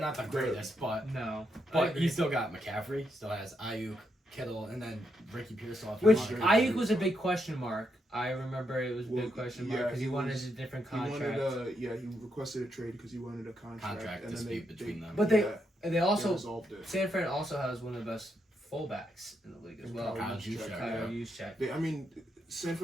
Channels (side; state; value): both; normal; correlation 0.80